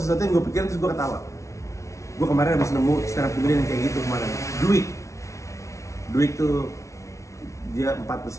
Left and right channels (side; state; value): right; late; 0.14 ms